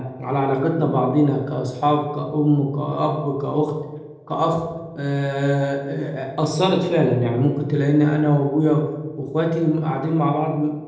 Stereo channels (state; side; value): identical; both; correlation 1.00